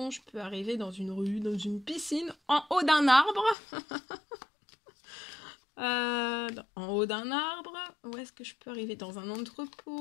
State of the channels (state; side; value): drops out; right; at 3.6 s